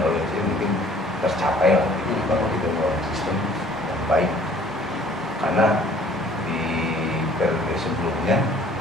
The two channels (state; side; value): normal; both; correlation 0.55